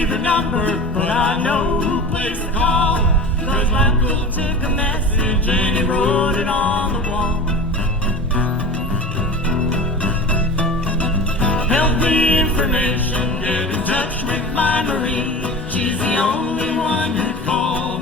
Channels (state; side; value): normal; both; correlation 0.32